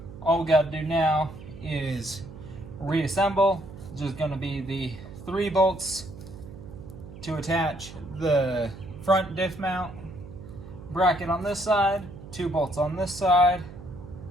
all we got to do now is reassemble. It's just going to be the 3 bolts to attach the front diff mount bracket on this side, 2 bolts on this side,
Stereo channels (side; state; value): right; noise; hum, 15 dB below the sound